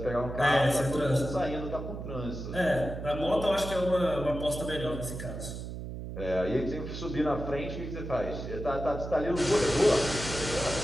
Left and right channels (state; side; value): noise; right; hum, 8 dB below the sound